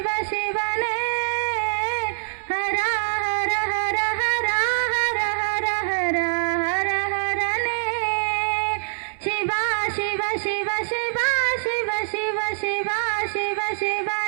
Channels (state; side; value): silent; left; 63 dB below the other